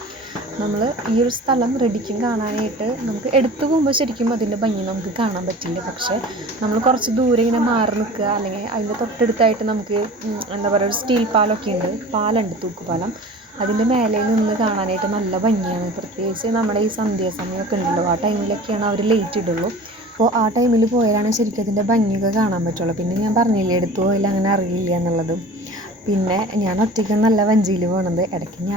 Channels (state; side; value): normal; both; correlation 0.40